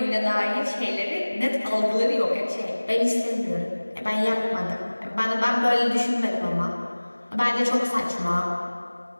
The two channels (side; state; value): both; inverted; correlation -1.00